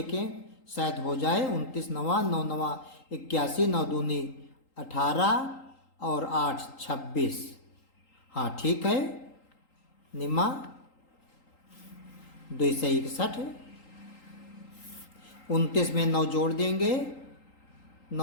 शायद हो जाए। 29 नवा 9 नवा 81, 9 दूनी 18 और 8 26। हाँ ठीक है, निम्मा 2 से 61। 29 में 9 जोड़ देंगे,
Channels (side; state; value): right; late; 3.8 ms